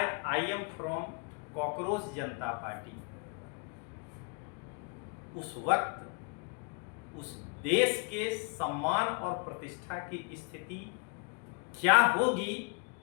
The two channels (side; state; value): right; quieter; 36.5 dB